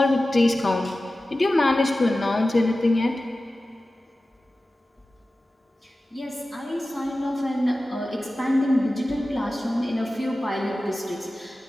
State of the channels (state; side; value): normal; both; correlation 0.95